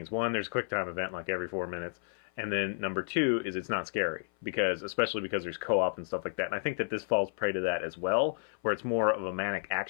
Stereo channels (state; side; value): silent; right; 57 dB below the other